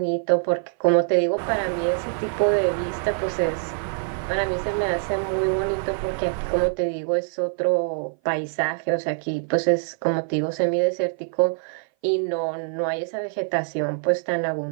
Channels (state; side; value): silent; left; 57 dB below the other